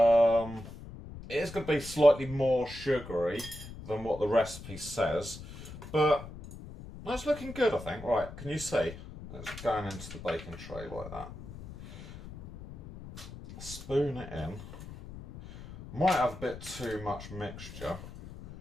is going to be slightly more sugary than what the recipe says, but that's looking good, I think. Right, can you see? It's going into the baking tray like that. Spoon it in. Might have a bit too much mixture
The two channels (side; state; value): left; noise; rumble, 13 dB below the sound